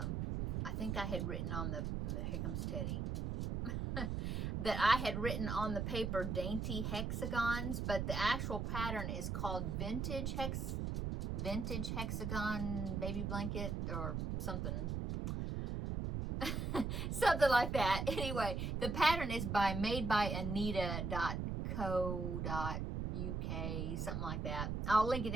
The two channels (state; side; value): noise; right; rumble, 1 dB below the sound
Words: think I had written on here comes Teddy, that I had written on the paper dainty hexagons, but the actual pattern is called vintage hexagon baby blanket or something. Something like that. Anyway, the pattern is made by Anita.co.uk, something like that. I'll link it